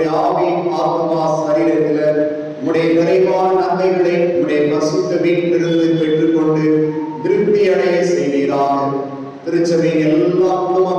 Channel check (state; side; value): identical; both; correlation 1.00